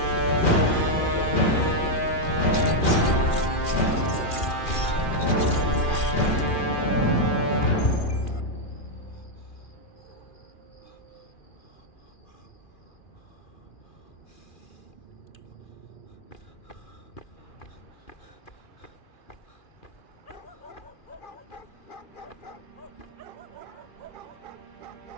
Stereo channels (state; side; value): late; right; 2.4 ms